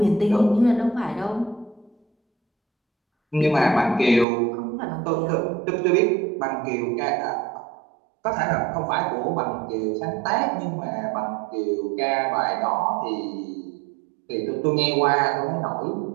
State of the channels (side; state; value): left; drops out; at 4.2 s